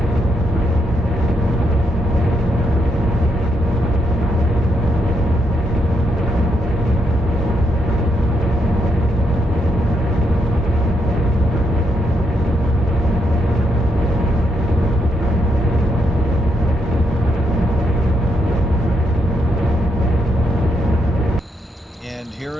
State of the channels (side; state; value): both; normal; correlation 0.79